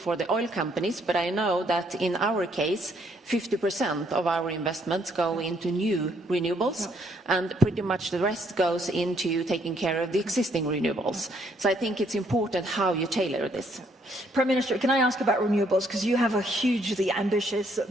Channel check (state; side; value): normal; both; correlation 0.69